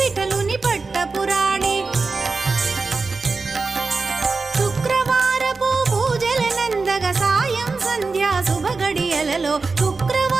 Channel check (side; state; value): left; quieter; 4.1 dB